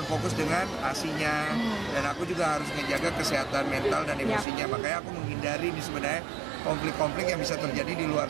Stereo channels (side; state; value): left; drops out; at 4.5 s